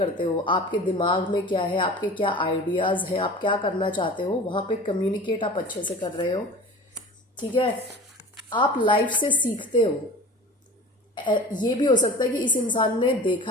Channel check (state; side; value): normal; both; correlation 0.38